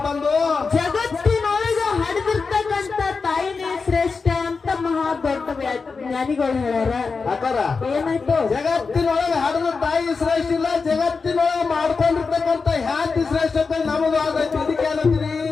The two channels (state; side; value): quieter; right; 4.7 dB